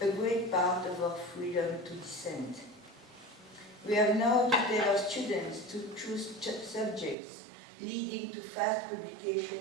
a great part of our freedom to dissent. We have now to tell our students to choose subjects leading to fast publication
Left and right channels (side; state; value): left; drops out; at 7.2 s